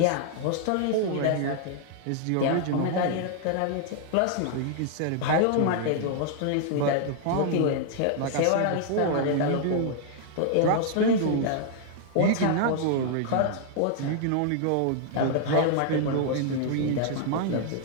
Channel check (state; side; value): different; both; correlation 0.00